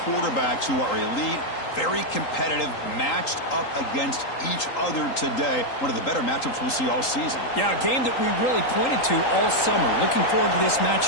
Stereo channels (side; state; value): right; late; 3.8 ms